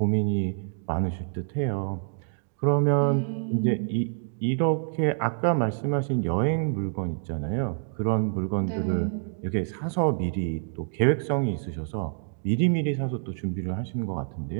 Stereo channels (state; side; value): silent; left; digital silence